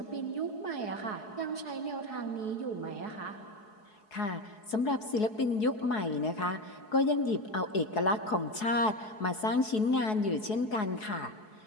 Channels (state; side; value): late; right; 4.7 ms